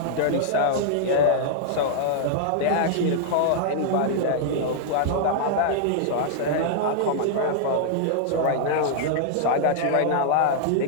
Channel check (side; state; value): both; different; correlation -0.01